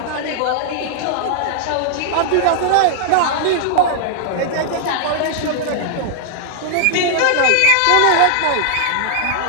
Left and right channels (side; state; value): both; different; correlation -0.01